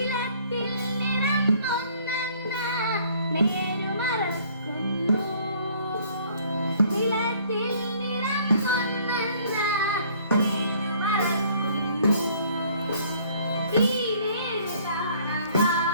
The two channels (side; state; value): both; inverted; correlation -0.58